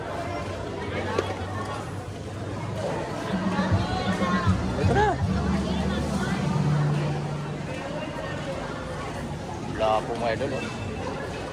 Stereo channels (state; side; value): identical; both; correlation 1.00